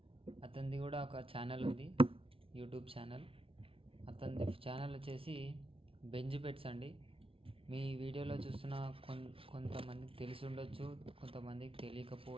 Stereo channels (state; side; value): late; left; 0.26 ms